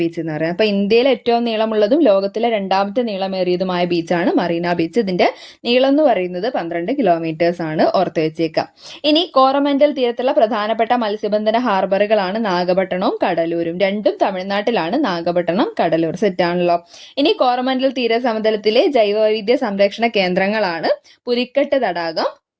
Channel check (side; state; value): both; identical; correlation 1.00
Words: എന്ന് പറയുന്നത്. അപ്പോൾ ഇന്ത്യയിലെ ഏറ്റവും നീളമുള്ളതും ലോകത്തിലെ രണ്ടാമത്തെ നീളമേറിയതുമായ ബീച്ചാണ് മറീന ബീച്ച്. ഇതിന്റെ നീളം എന്ന് പറയുന്നത് 12 കിലോമീറ്റേഴ്സ് ആണ്, ഓർത്ത് വെച്ചേക്കാം. ഇനി കോറമൻഡൽ തീരത്തുള്ള പ്രധാനപ്പെട്ട മത്സ്യബന്ധന ഹാർബറുകളാണ് നാഗപട്ടണവും കടലൂരും. രണ്ടും തമിഴ്നാട്ടിലാണ്, നാഗപട്ടണം, കടലൂർ. സെറ്റാണല്ലോ. ഇനി കോറമൻഡൽ തീരസമതലത്തിലെ ജൈവവൈവിധ്യ സംരക്ഷണ കേന്ദ്രങ്ങളാണ് പുലിക്കെട്ട് തടാകം,